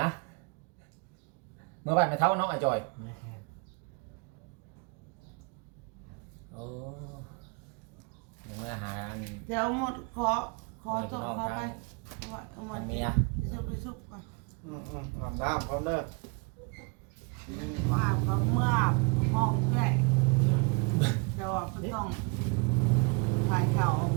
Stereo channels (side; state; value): left; quieter; 33.0 dB